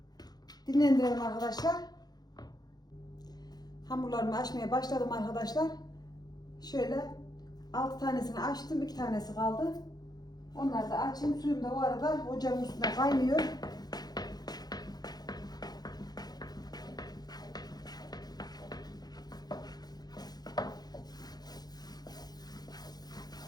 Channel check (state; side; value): late; right; 0.19 ms